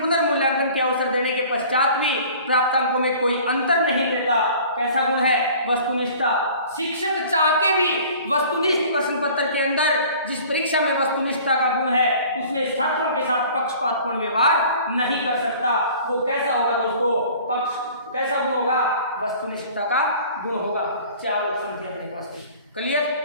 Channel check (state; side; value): inverted; both; correlation -0.47